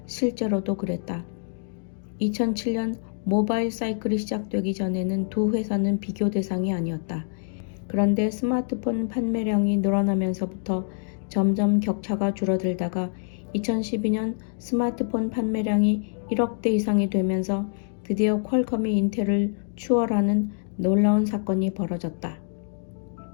실제로도 그랬다. 2007년 모바일 사이클이 시작되기 전에는 두 회사는 비교 대상이 아니었다. 그런데 스마트폰 판매량이 늘어나면서부터 점점 격차가 줄어들다가 2012년 스마트폰 판매량이 1억대 이상이 되면서 드디어 퀄컴이 인텔을 추월하는 놀라운 사건이 벌어졌다.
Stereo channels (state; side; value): silent; right; 61 dB below the other